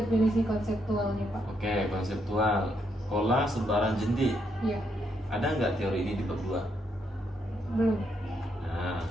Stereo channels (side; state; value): both; normal; correlation 0.77